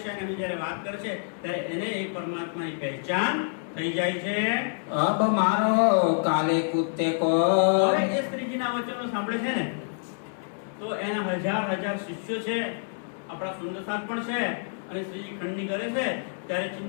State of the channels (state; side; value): silent; right; digital silence